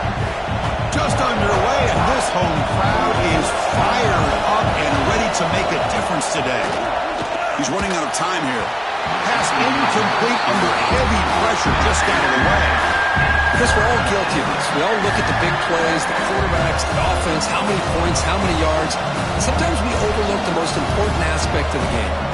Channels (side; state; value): both; identical; correlation 1.00